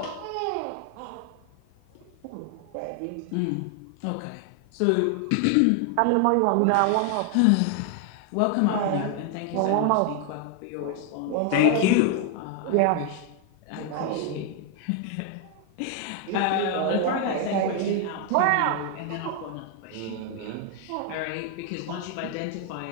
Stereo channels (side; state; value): both; different; correlation 0.00